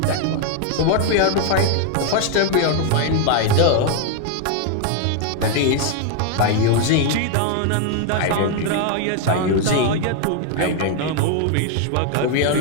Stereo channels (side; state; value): both; different; correlation 0.00